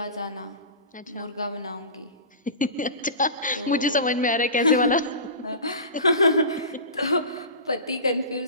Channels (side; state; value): both; inverted; correlation -0.32